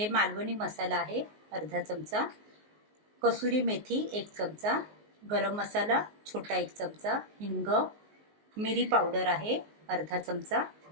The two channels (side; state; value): left; late; 19 ms